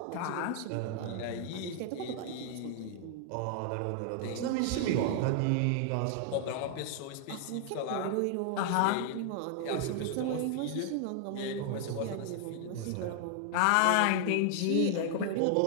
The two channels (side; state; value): both; different; correlation 0.00